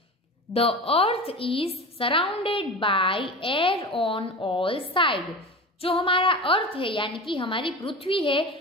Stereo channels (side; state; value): both; normal; correlation 0.30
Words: The earth is surrounded by air on all side, जो हमारा अर्थ है यानी कि हमारी पृथ्वी